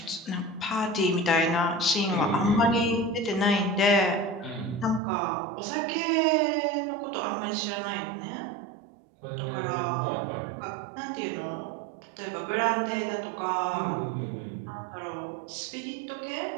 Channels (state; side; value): drops out; left; at 5.0 s